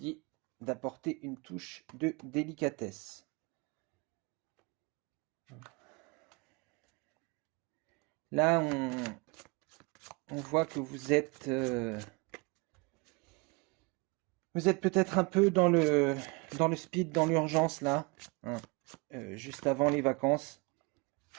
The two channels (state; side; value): quieter; left; 28.3 dB